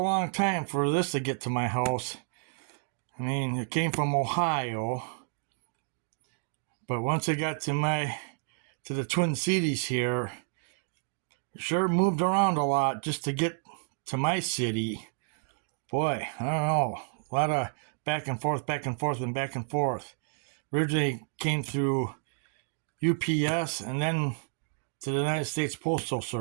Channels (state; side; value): silent; left; 58 dB below the other